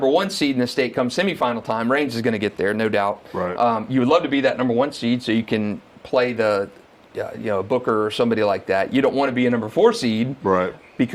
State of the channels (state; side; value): identical; both; correlation 1.00